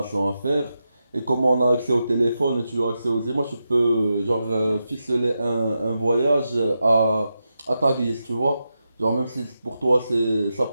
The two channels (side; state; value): both; inverted; correlation -0.88